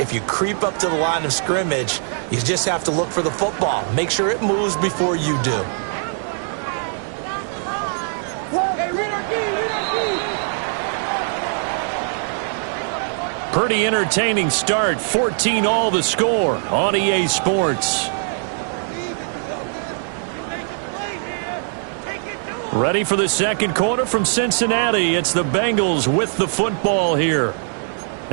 you creep up to the line of scrimmage, you just have to look for the football. Make sure it moves before you do. Pretty entertaining start. 14 all the score on EA Sports. Ready for the second quarter from Cincinnati. It's the Bengals with the football here,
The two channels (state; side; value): silent; left; 61 dB below the other